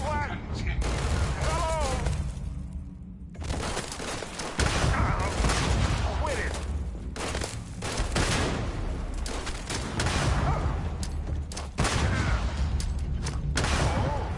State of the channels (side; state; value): both; identical; correlation 1.00